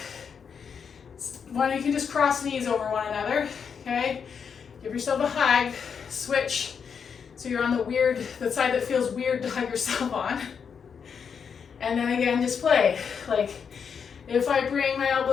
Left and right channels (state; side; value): quieter; right; 6.7 dB